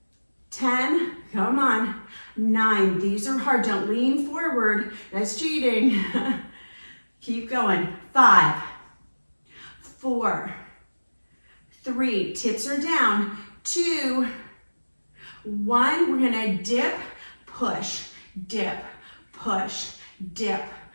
10, come on. 9, these are hard. Don't lean forward. That's cheating. Keep going. 5, 4, 3, tips are down. 2, 1, we're gonna dip, push, dip, push, dip,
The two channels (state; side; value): inverted; both; correlation -1.00